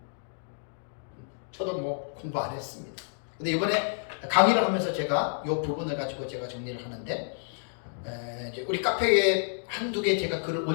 저도 뭐 공부 안 했습니다. 근데 이번에 강의를 하면서 제가 이 부분을 가지고 제가 정리를 하는데 이제 우리 카페에 한두 개 제가 글을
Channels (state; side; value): silent; right; digital silence